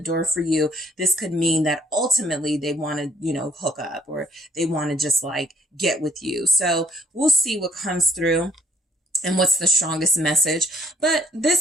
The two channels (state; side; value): normal; both; correlation 0.62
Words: for you. This could mean that ultimately they want to, hook up, or they want to just like get with you. So we'll see what comes through and what's the strongest message. But